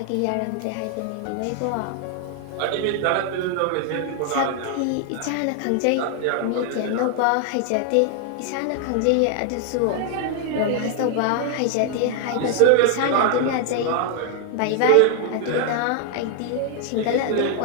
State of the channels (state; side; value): different; both; correlation 0.00